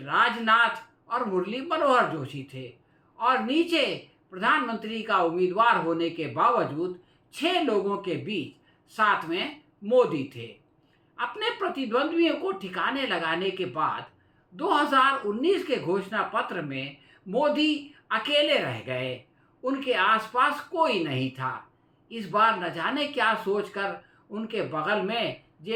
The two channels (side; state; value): both; identical; correlation 1.00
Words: राजनाथ और मुरली मनोहर जोशी थे और नीचे प्रधानमंत्री का उम्मीदवार होने के बावजूद 6 लोगों के बीच साथ में मोदी थे। अपने प्रतिद्वंद्वियों को ठिकाने लगाने के बाद 2019 के घोषणा पत्र में मोदी अकेले रह गए, उनके आसपास कोई नहीं था। इस बार न जाने क्या सोचकर उनके बगल में